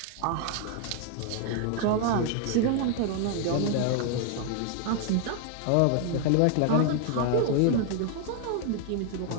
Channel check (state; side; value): different; both; correlation 0.00